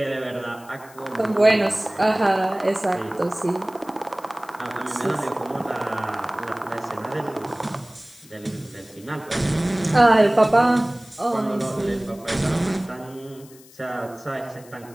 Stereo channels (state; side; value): noise; left; hiss, 23 dB below the sound